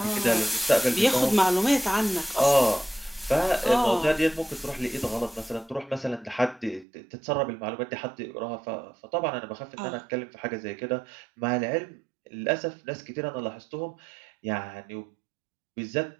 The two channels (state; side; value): drops out; left; at 6.9 s